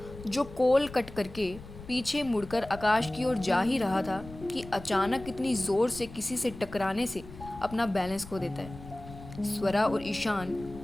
जो कॉल कट करके पीछे मुड़कर आकाश की ओर जा ही रहा था कि अचानक इतनी ज़ोर से किसी से टकराने से अपना बैलेंस खो देता है। स्वरा और ईशान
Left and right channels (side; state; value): left; noise; rumble, 16 dB below the sound